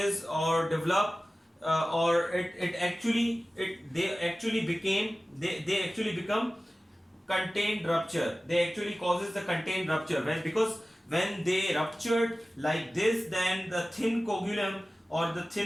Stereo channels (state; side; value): normal; both; correlation 0.97